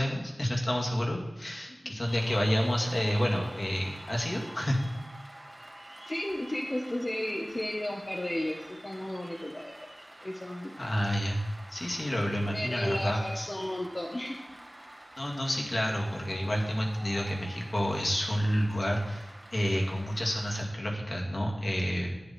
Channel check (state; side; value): normal; both; correlation 0.98